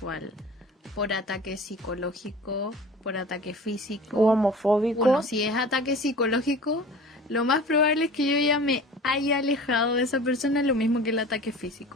por ataque psicológico, por ataque físico o homofóbico. Bueno, si es ataque psicológico, lo más probable es que yo ya me haya alejado de esa persona, lo mismo que el ataque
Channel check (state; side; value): normal; both; correlation 0.40